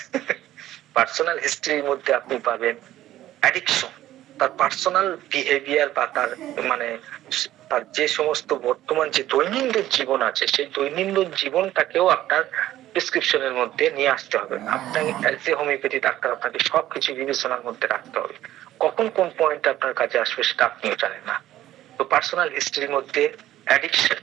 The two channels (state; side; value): quieter; left; 13.8 dB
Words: পার্সোনাল হিস্ট্রির মধ্যে আপনি পাবেন অ্যাডিকশন, তার পার্সোনাল বিহেভিয়ার বা তার মানে তার যে সমস্ত বর্তমান যে দৈনন্দিন জীবন আছে, সেই দৈনন্দিন জীবনটাকেও আপনার প্রেসক্রিপশনের মধ্যে নিয়ে আসতে হবে। আপনার অ্যাজ এ হোমিওপ্যাথি ডাক্তার আপনাকে সবকিছু বিবেচনার মধ্যে রাখতে হবে। কখন কোন পয়েন্ট আপনার কাছে আসবে সেটা আপনিও জানেন না। তো পার্সোনাল হিস্ট্রির মধ্যে অ্যাডিকশন,